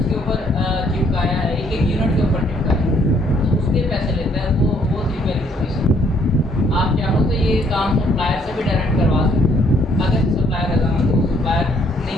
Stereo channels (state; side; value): normal; both; correlation 0.66